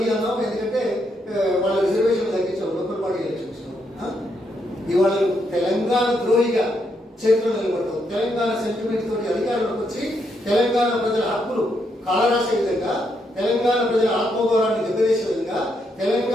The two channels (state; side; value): normal; both; correlation 0.78